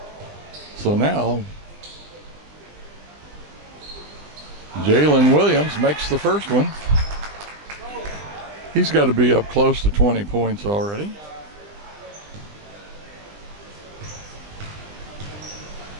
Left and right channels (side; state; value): left; late; 20 ms